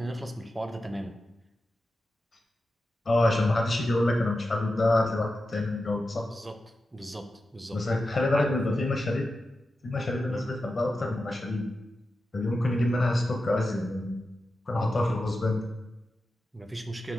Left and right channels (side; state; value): both; normal; correlation 0.91